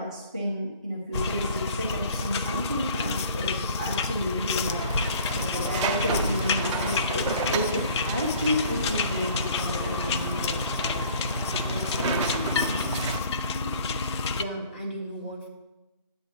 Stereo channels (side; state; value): both; inverted; correlation -0.50